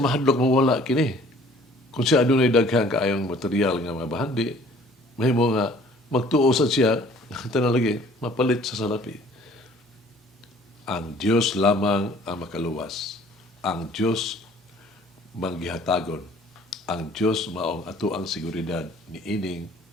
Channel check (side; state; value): both; normal; correlation 0.54